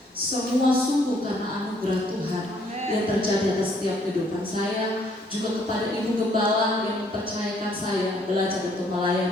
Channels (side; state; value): both; normal; correlation 0.65